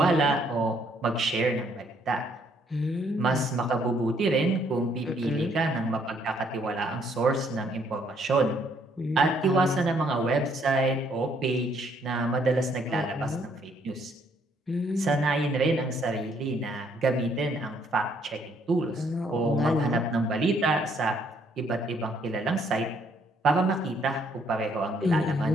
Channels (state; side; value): normal; both; correlation 0.67